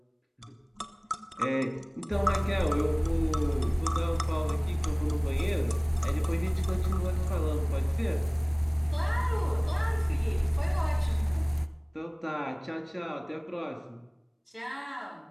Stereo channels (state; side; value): identical; both; correlation 1.00